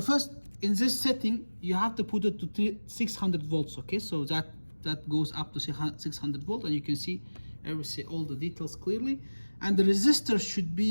in this setting you have to put it to 600 volts, okay? So that goes up to 600 volt, and you can see all the details clearly. And the resistor should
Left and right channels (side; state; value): both; inverted; correlation -1.00